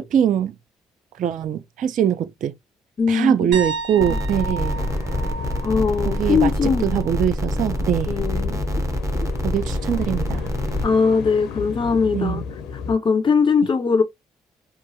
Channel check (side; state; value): both; normal; correlation 0.67